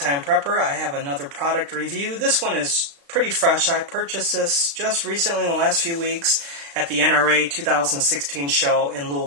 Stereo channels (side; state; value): left; late; 35 ms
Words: Prepper. I have another product review. This one is pretty fresh. I purchased this just recently in the last few weeks at the NRA 2016 show in